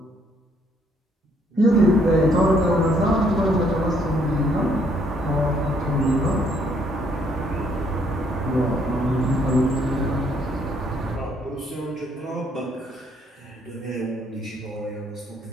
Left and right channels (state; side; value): normal; both; correlation 0.67